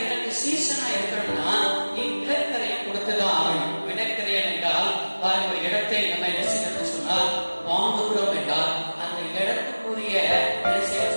எனக்கு சீசனா இருக்கணும்னா நீ விளக்கரையை கொடுத்துதான் ஆகணும். விளக்கரையன் என்றால் ஒரு இடத்தை நம்ம என்ன செய்யணும்னு சொன்னா வாங்குகிறோம் என்றால் அந்த இடத்துக்குரிய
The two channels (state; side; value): inverted; both; correlation -1.00